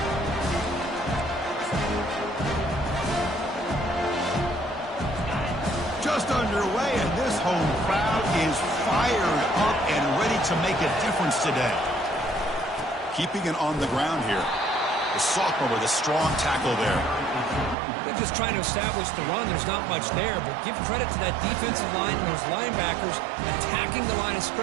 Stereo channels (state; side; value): drops out; left; at 17.8 s